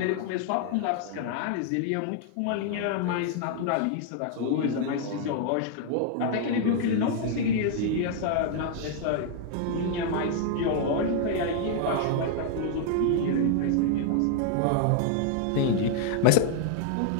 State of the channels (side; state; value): both; different; correlation 0.00